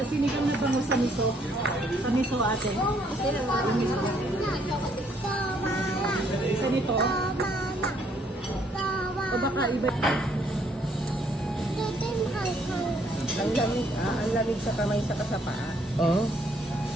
sinigang na bangus sa miso. Sa miso ate. Isa nito. O baka iba. Ang lamig sa kamay sa kasapaa. Oo.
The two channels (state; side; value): normal; both; correlation 0.67